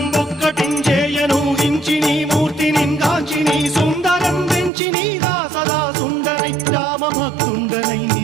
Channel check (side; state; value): left; drops out; at 4.7 s